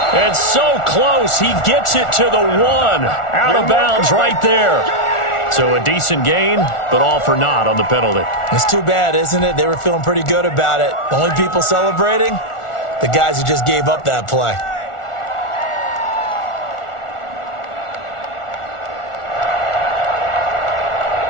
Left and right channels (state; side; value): late; right; 1.4 ms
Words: And so close, he gets it to the 1. Out of bounds right there. So a decent gain, but all for naught on the penalty. It's too bad, isn't it? They were feeling pretty good about it. The only people celebrating, the guys who just gave up that play.